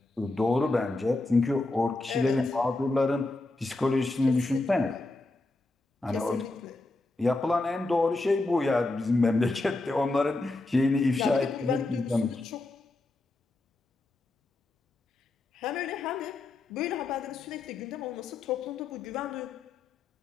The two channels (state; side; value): quieter; right; 3.0 dB